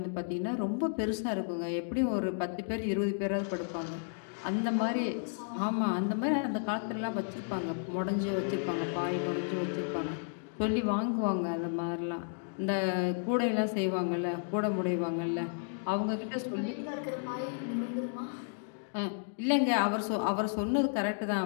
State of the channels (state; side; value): silent; right; digital silence